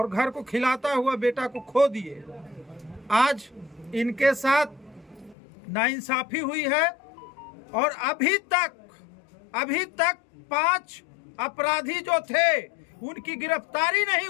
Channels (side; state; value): right; drops out; at 5.4 s